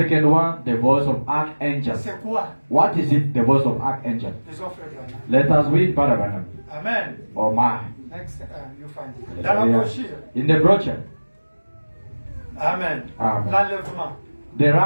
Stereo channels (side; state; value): both; inverted; correlation -1.00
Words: one, the voice of archangel. C'est quoi? What is it, the voice of archangel? Disons Frère Branham. Let us read Brother Branham. Amen. Oh my. Next, you find it. Dans la brochure. In the brochure, Amen. Amen. L'enlèvement. the